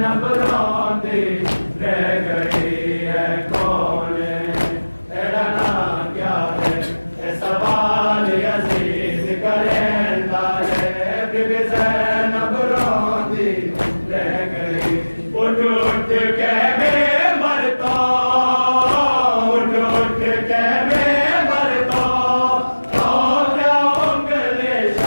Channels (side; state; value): both; inverted; correlation -1.00